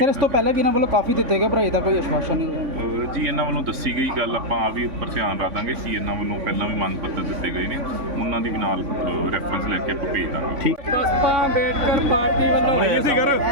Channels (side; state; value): left; late; 3.5 ms